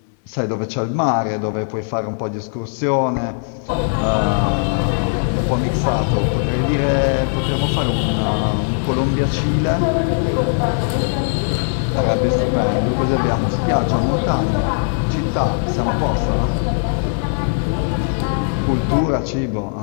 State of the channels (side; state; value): right; silent; digital silence